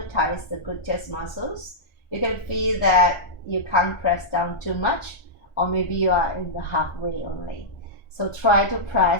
thighs, the gluteus muscles, you can feel that you can't press down too much, or maybe you are in the halfway only. So try to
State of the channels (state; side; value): late; right; 1.4 ms